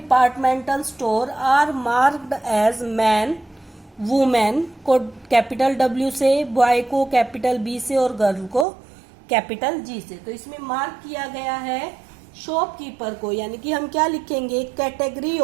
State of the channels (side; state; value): left; drops out; at 8.7 s